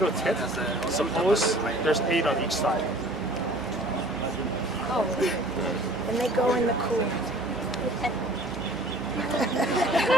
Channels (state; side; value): normal; both; correlation 0.51